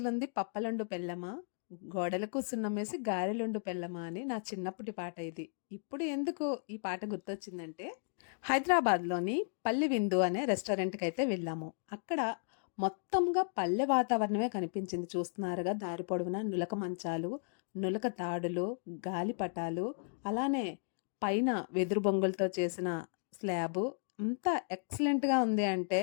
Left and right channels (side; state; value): right; silent; digital silence